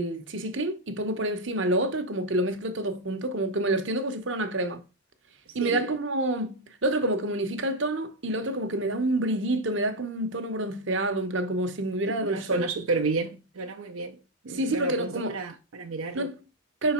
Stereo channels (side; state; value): both; normal; correlation 0.01